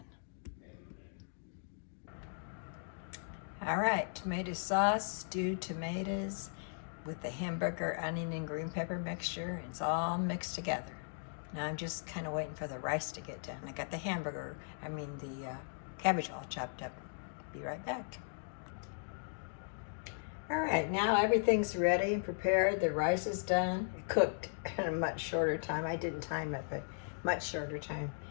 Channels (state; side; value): silent; right; digital silence